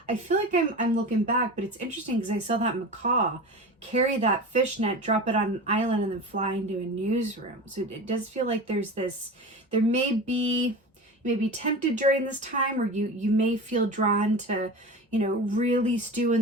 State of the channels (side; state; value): both; normal; correlation 0.31